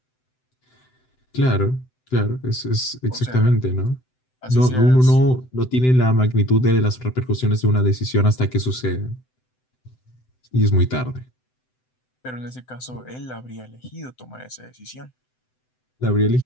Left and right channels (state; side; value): late; right; 7.9 ms